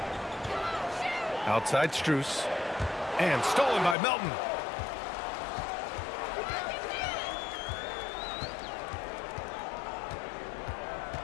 Outside Strus. And stolen by Melton.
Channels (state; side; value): drops out; right; at 4.0 s